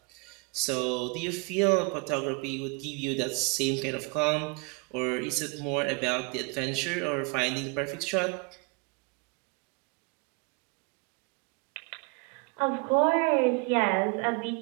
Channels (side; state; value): left; quieter; 29.6 dB